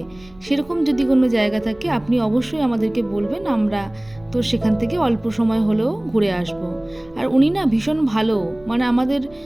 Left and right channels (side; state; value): right; noise; rumble, 26 dB below the sound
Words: সেরকম যদি কোনো জায়গা থাকে আপনি অবশ্যই আমাদেরকে বলবেন, আমরা তো সেখান থেকে অল্প সময় হলেও ঘুরে আসব। আর উনি না ভীষণ ভালো, আমাদের